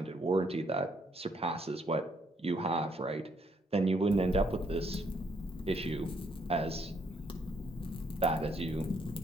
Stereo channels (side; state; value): both; normal; correlation 0.71